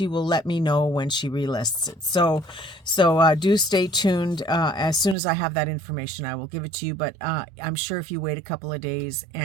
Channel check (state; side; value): drops out; left; at 5.2 s